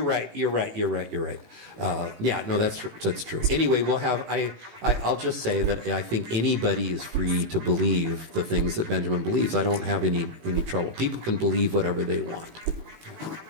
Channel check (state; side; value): late; left; 18 ms